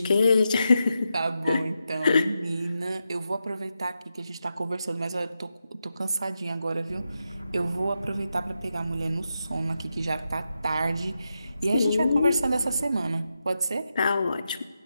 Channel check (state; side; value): inverted; both; correlation -0.87